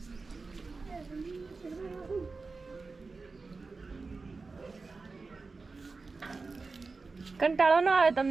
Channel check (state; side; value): quieter; left; 4.0 dB